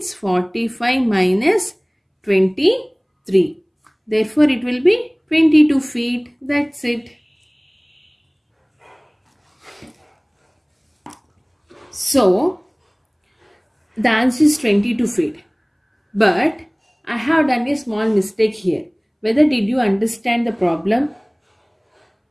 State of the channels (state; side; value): identical; both; correlation 1.00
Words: 45 minus 23. Therefore, it will be 22 feet. That's it. So, the answer is 22 feet. But I have done a small mistake here. Whether did you understand the problem?